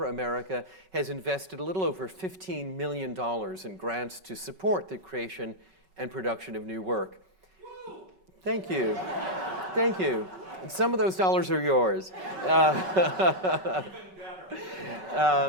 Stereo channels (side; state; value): left; late; 5.3 ms